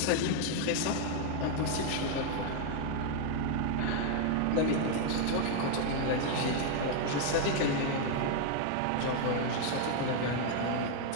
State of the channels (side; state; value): both; different; correlation 0.00